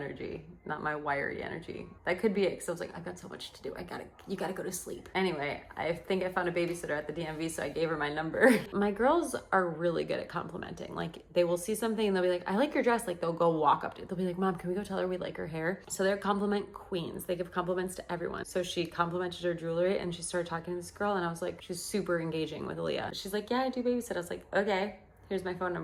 not my wiry energy. That could be it, because I was like, I've got so much to do. You gotta go to sleep. Anyway, I think I found a babysitter at the DMV, so I gave her my number. My girls are really good at complimenting. Like, they will see something and they'll be like, I like your dress. Like, they'll go walk up to it. They'll be like, Mom, can we go tell her we like her hair? So they're compliment queens. They give compliments to everyone. So she complimented her jewelry and she started talking to this girl and I was like, she's super engaging with Aaliyah. She's like, yeah, I do babysit. I was like, okay. Here's my phone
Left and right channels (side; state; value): both; identical; correlation 1.00